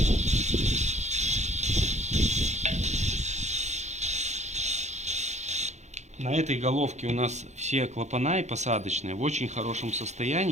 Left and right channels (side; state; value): left; late; 0.33 ms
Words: На этой головке у нас все клапана и посадочные в очень хорошем